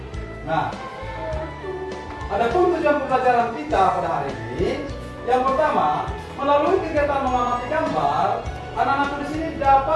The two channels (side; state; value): both; identical; correlation 1.00